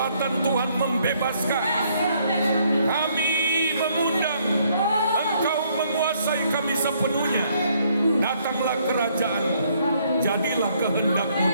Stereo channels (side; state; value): both; inverted; correlation -0.68